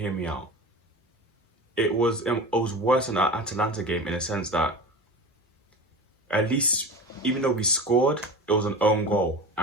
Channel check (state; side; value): normal; both; correlation 0.31